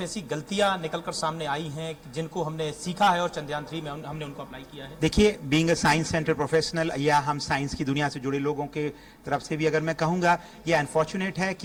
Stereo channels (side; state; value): both; identical; correlation 1.00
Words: ऐसी गलतियां निकलकर सामने आई हैं जिनको हमने सीखा है और चंद्रयान 3 में हमने उनको अप्लाई किया है? देखिए, being a science centre professional या हम साइंस की दुनिया से जुड़े लोगों के तरफ से भी अगर मैं कहूँगा, ये अनफॉर्चुनेट है